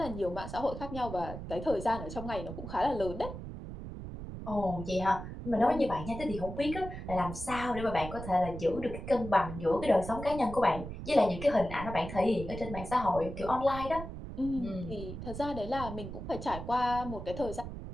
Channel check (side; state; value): right; noise; rumble, 9 dB below the sound